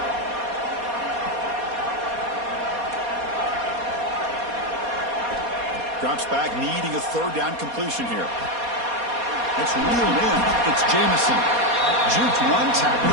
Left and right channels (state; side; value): late; left; 4.2 ms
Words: Drops back, needing a 3rd down completion here. It's reeled in. It's Jamison. Juked one tackle